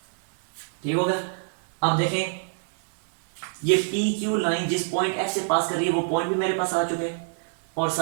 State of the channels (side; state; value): left; silent; digital silence